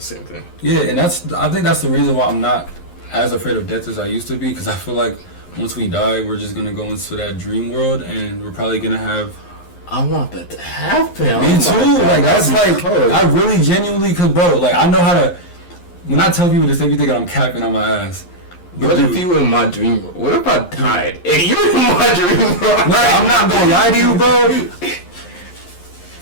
same thing. Yeah, and I think that's the reason why I'm not as afraid of death as I used to be, because I feel like once we die, we're just gonna go into that dream world, and we're probably gonna have. I want that to happen. Me too. Like, that's like, I really genuinely, cause bro, like, I know how to. When I tell people this, they be thinking I'm capping on my ass. But what dude, if you were in my dream world? What if I died and you were in my dream world? No, I'm not gonna lie to you, bro.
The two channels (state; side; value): late; right; 11 ms